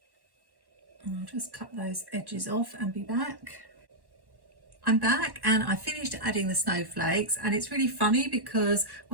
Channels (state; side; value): late; left; 1.1 ms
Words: I'll just cut those edges off and be back. I'm back and I finished adding the snowflakes, and it's really funny because